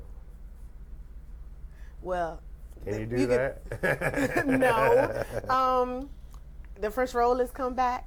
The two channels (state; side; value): identical; both; correlation 1.00